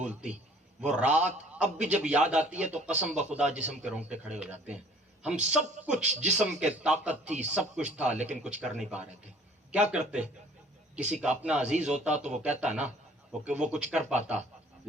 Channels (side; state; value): both; normal; correlation 0.54